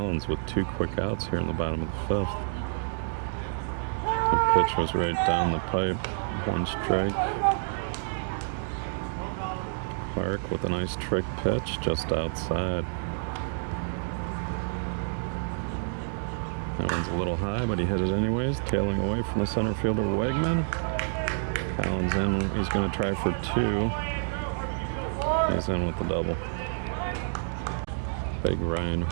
with 2 quick outs here in the bottom of the 5th. The pitch was right down the pipe. 1 strike. Clark with a nice trick pitch just outside. That one's a little high, but he hit it anyways, tailing away from the center fielder Wegman. Collins in, he's going to try for 2. He's in with the double. Big Ryan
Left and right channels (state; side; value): silent; left; digital silence